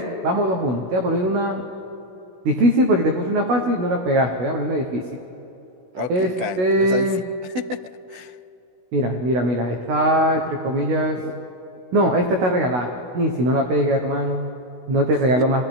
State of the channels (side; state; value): left; late; 16 ms